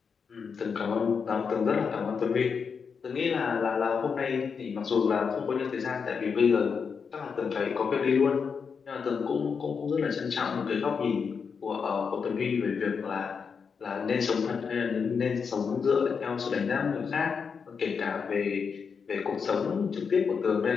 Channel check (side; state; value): right; quieter; 5.9 dB